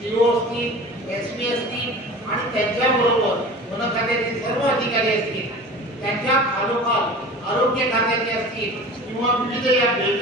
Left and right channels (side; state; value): both; normal; correlation 0.38